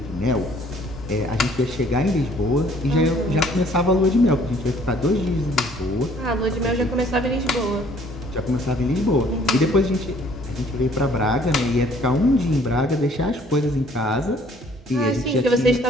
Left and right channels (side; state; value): both; normal; correlation 0.59